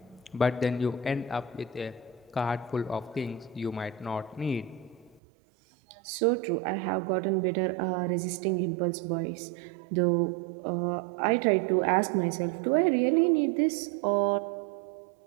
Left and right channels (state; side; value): drops out; left; at 5.2 s